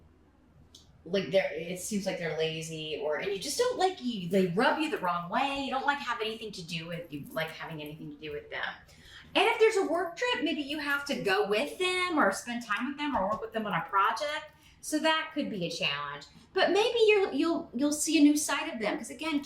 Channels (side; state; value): both; identical; correlation 1.00